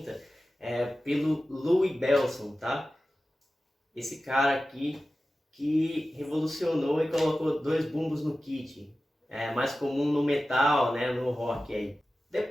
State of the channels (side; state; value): both; normal; correlation 0.95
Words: pelo Louis Bellson, tá? Esse cara aqui que revolucionou e colocou 2 bumbos no kit. É mais comum no metal, né, no rock aí.